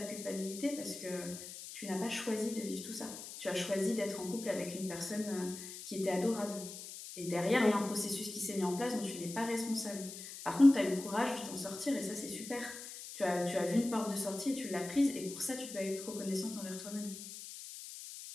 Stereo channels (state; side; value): noise; left; hiss, 11 dB below the sound